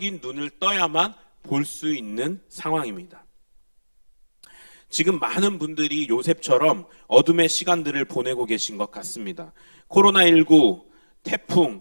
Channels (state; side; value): inverted; both; correlation -1.00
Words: 눈을 떠야만 볼 수 있는 상황입니다. 지금 많은 분들이 요셉처럼 어둠의 시간들을 보내고 계신 것 같습니다. 코로나19,